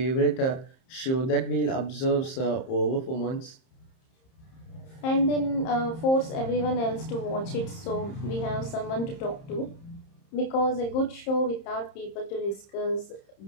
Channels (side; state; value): right; late; 30 ms